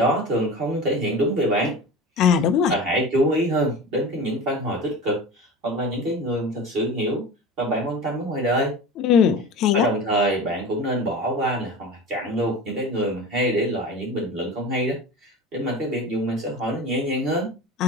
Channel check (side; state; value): both; normal; correlation 0.32